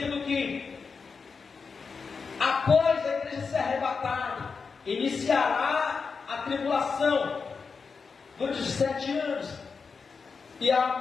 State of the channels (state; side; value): quieter; right; 5.1 dB